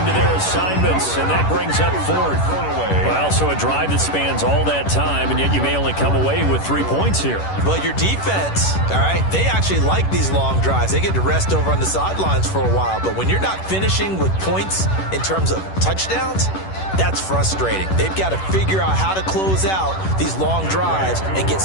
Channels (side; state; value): right; late; 10 ms